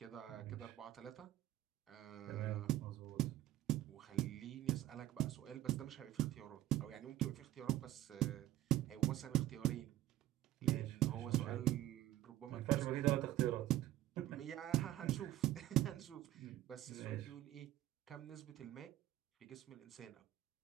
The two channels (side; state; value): left; quieter; 14.5 dB